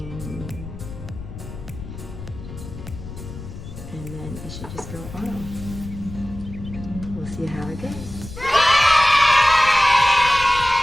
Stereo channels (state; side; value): noise; left; rumble, 12 dB below the sound